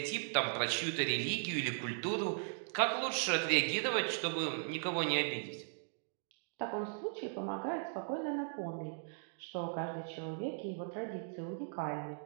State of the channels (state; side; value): silent; left; digital silence